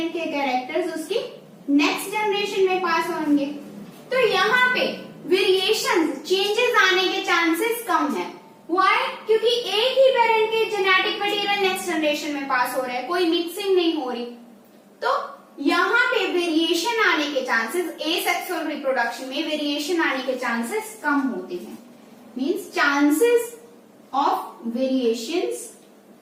के कैरेक्टर्स उसकी नेक्स्ट जनरेशन में पास होंगे। तो यहाँ पे वेरिएशंस, चेंजेस आने के चांसेस कम है। व्हाई? क्योंकि एक ही पेरेंट के जेनेटिक मटेरियल नेक्स्ट जनरेशन में पास हो रहा है, कोई मिक्सिंग नहीं हो रही। तो यहाँ पे वेरिएशन आने के चांसेस, एसेक्सुअल रिप्रोडक्शन में वेरिएशन आने के चांसेस कम होते हैं। Means chances of variations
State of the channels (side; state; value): both; identical; correlation 1.00